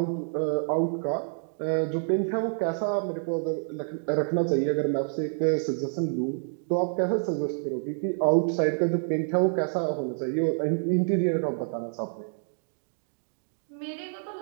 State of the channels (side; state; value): left; silent; digital silence